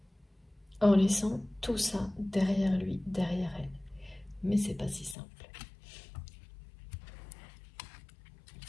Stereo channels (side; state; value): right; drops out; at 5.2 s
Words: en laissant tout ça derrière lui, derrière elle. Mais c'est pas si simple.